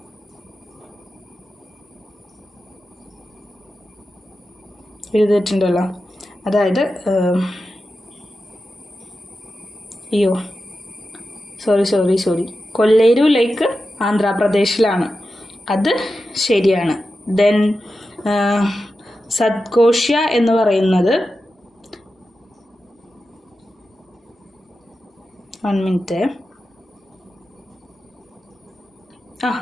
എഴുതിയിട്ടുണ്ടല്ലോ, അതായത് സോറി കൊല്ലേരു ലേക്ക് ആന്ധ്രാപ്രദേശിലാണ്, അത് ശരിയാണ്. ദെൻ സത്കോഷ്യ എന്ന് പറയുന്നത് 1 minute.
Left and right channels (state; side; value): normal; both; correlation 0.91